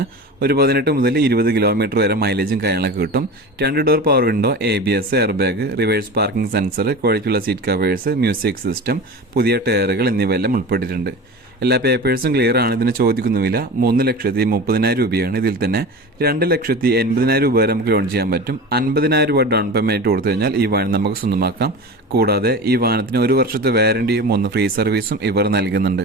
ഒരു 18 മുതൽ 20 കിലോമീറ്റർ വരെ മൈലേജും കാര്യങ്ങളൊക്കെ കിട്ടും. 2 door power window, ABS, air bag, reverse parking sensor, ക്വാളിറ്റിയുള്ള സീറ്റ് കവേഴ്സ്, മ്യൂസിക് സിസ്റ്റം, പുതിയ ടയറുകൾ എന്നിവയെല്ലാം ഉൾപ്പെട്ടിട്ടുണ്ട്. എല്ലാ പേപ്പേഴ്സും ക്ലിയർ ആണ്. ഇതിന് ചോദിക്കുന്ന വില 3,30,000 രൂപയാണ്. ഇതിൽ തന്നെ 2,80,000 രൂപ വരെ നമുക്ക് ലോൺ ചെയ്യാൻ പറ്റും. 50,000 രൂപ ഡൗൺ പേയ്മെന്റ് കൊടുത്തു കഴിഞ്ഞാൽ ഈ വാഹനം നമുക്ക് സ്വന്തമാക്കാം. കൂടാതെ ഈ വാഹനത്തിന് 1 വർഷത്തെ വാറന്റിയും 3 ഫ്രീ സർവീസും ഇവർ നൽകുന്നുണ്ട്.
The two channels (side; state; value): both; normal; correlation 0.31